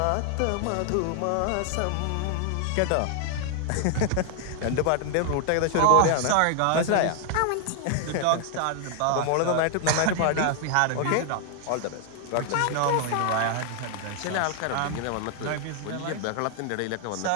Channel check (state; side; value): different; both; correlation 0.00